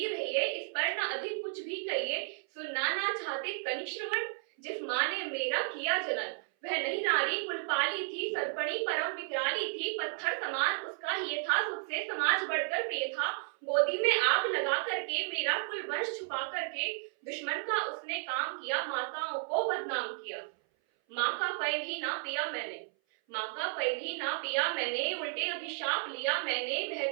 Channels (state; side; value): silent; left; 56 dB below the other